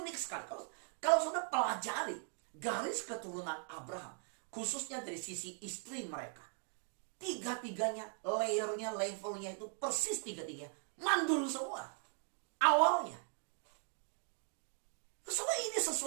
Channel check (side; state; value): left; silent; 51 dB below the other